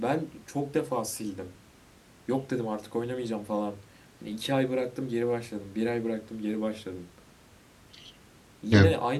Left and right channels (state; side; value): identical; both; correlation 1.00